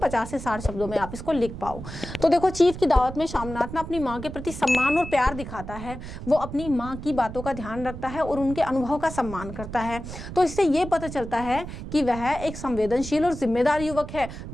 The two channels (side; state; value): right; noise; rumble, 10 dB below the sound